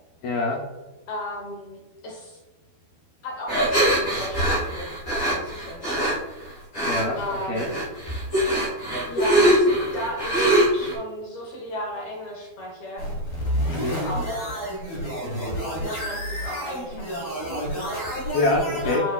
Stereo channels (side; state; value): right; late; 12 ms